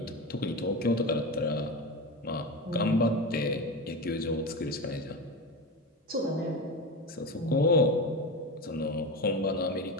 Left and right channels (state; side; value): normal; both; correlation 0.22